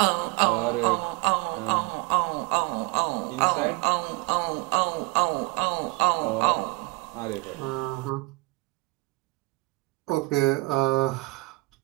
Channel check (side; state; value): left; quieter; 24.4 dB